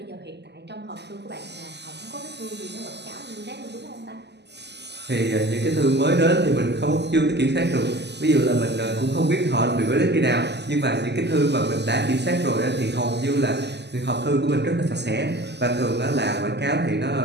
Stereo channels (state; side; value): late; left; 0.50 ms